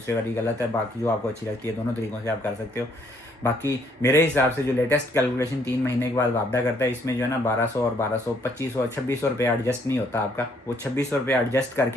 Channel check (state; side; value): normal; both; correlation 0.67